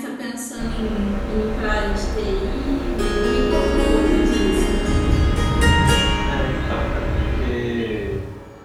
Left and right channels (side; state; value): both; identical; correlation 1.00